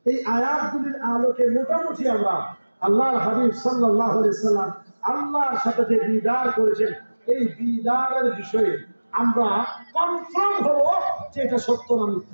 এই আয়াতগুলির আলোকে মোটামুটি আমরা আল্লাহর হাবিব সাল্লাল্লাহু আলাইহি সাল্লাম আল্লাহর সাথে যে দিদার করেছেন, এই দিদারের বিষয়ে আমরা কনফার্ম হব যে এটা সত্য না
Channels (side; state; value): both; inverted; correlation -1.00